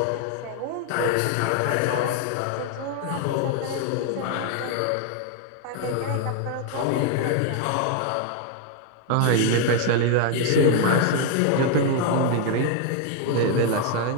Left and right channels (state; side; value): different; both; correlation 0.00